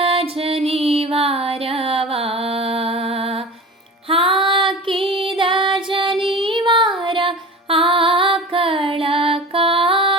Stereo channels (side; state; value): both; normal; correlation 0.36